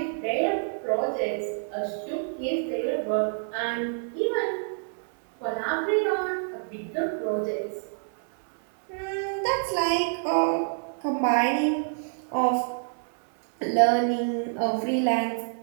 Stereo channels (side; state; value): left; silent; digital silence